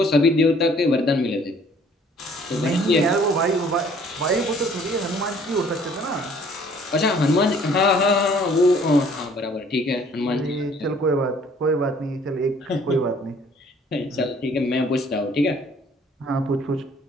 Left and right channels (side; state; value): both; normal; correlation 0.57